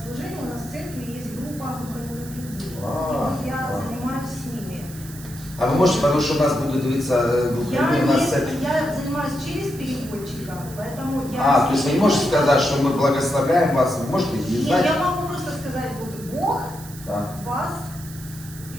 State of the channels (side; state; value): right; noise; hiss, 16 dB below the sound